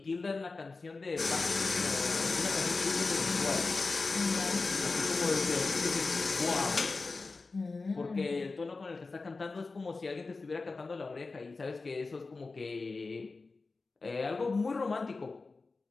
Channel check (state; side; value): quieter; right; 3.9 dB